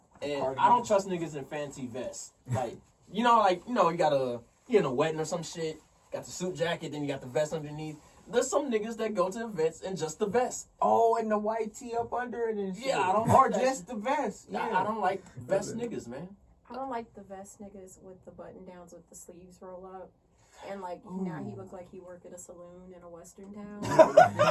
And I don't trust niggas in fancy vests. Like, you gotta, you in a wedding or some shit, got the suit jacket, then you got the vest underneath. There's some niggas that go to events in just the vest. Oh, and the white tee up under it and shit. Yeah, I don't Or like that just shit. the vest. Yeah. I don't like vest niggas, man. I don't like the vest niggas with the button downs with the sleeves roll up. And like now he look like he work at a saloon in a western town.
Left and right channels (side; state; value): both; identical; correlation 1.00